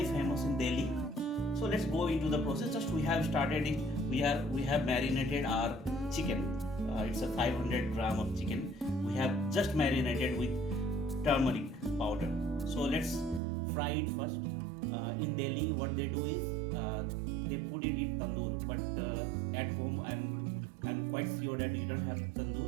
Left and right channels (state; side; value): drops out; left; at 13.4 s